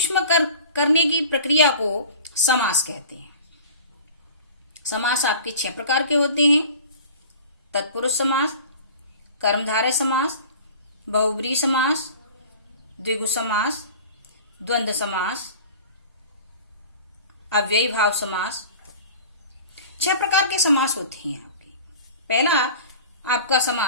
करने की प्रक्रिया को समास कहते हैं। समास आपके 6 प्रकार के होते हैं। तत्पुरुष समास, कर्मधारय समास, बहुब्रीहि समास, द्विगु समास, द्वंद्व समास, अव्ययी भाव समास। 6 प्रकार के समास होते हैं आपके। पहला आपका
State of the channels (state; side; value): inverted; both; correlation -0.41